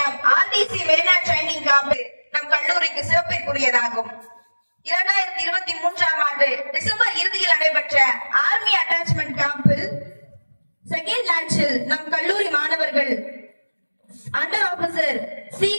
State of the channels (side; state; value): both; inverted; correlation -1.00